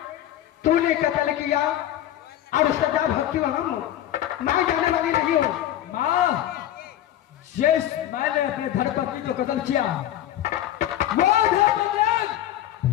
तूने कत्ल किया और सजा भक्ति हम मैं जाने वाली नहीं हूँ। माँ, जिस मैंने अपने धर्मपत्नी को कत्ल किया वो धर्मपत्नी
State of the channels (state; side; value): quieter; right; 12.4 dB